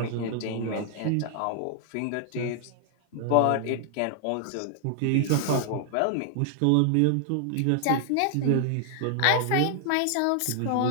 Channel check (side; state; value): both; different; correlation 0.00